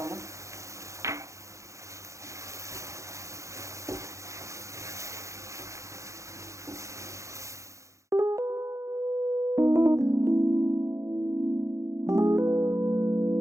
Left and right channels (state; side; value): late; left; 0.15 ms